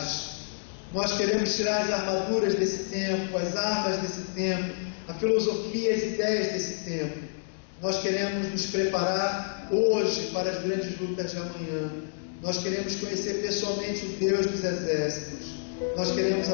Nós queremos tirar as armaduras desse tempo, as armas desse tempo, a filosofia, as ideias desse tempo. Nós queremos nos preparar hoje para as grandes lutas de amanhã. Nós queremos conhecer pessoalmente o Deus dos exércitos. Nós queremos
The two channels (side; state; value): right; silent; digital silence